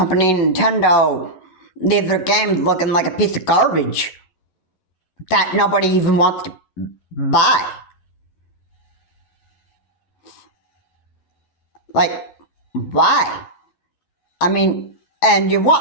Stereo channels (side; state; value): right; late; 11 ms